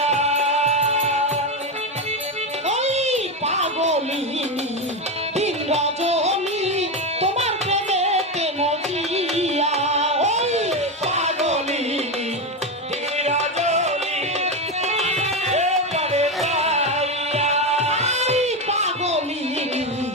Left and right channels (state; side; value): normal; both; correlation 0.13